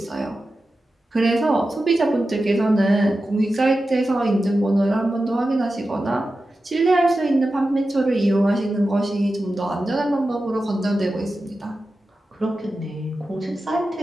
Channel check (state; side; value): normal; both; correlation 0.92